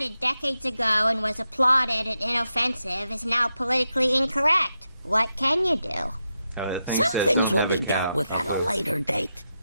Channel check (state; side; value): inverted; both; correlation -0.87